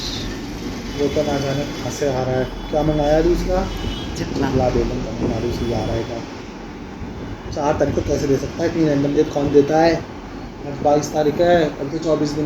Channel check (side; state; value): both; identical; correlation 1.00